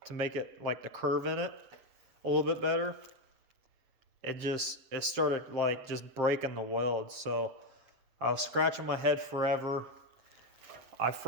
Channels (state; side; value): late; left; 7.4 ms